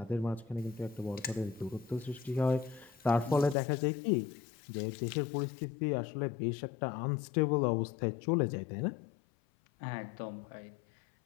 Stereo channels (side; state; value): right; drops out; at 3.6 s